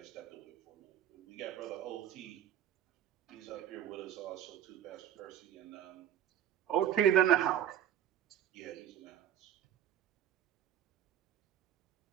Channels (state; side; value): quieter; left; 10.8 dB